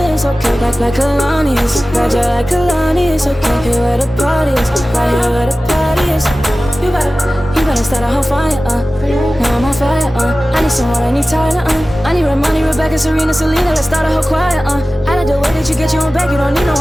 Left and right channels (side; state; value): both; normal; correlation 0.96